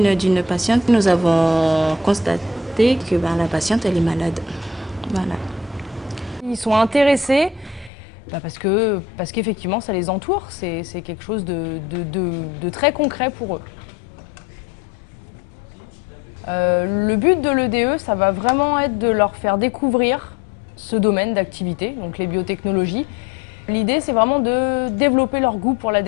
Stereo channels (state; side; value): drops out; right; at 7.9 s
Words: d'une patiente. Nous avons constaté que la patiente, elle est malade. Voilà. Ils sont intéressés parce qu'effectivement, ça les entoure. C'est quelque chose de très concret pour eux. Le but de l'EDE, ça va vraiment être de leur faire découvrir ce domaine d'activité, donc les biotechnologies. L'idée, c'est vraiment de développer leur goût pour la